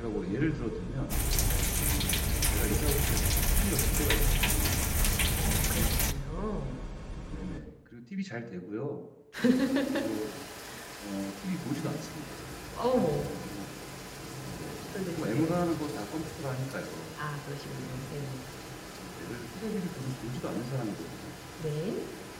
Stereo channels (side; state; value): both; identical; correlation 1.00